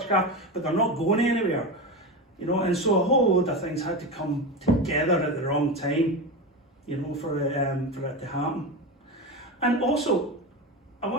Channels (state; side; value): normal; both; correlation 0.20